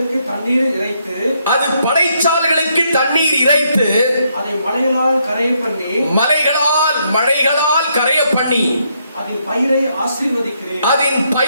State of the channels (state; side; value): inverted; both; correlation -0.75